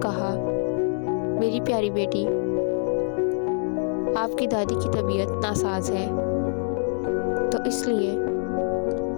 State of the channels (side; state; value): right; silent; 57 dB below the other